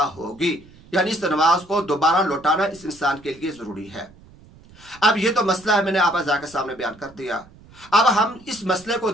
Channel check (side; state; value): right; noise; rumble, 24 dB below the sound